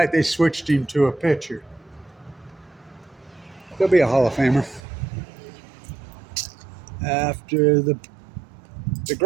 they switched him to a pitcher. He'll be a Hall of Famer. After the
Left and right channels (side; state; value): left; drops out; at 4.8 s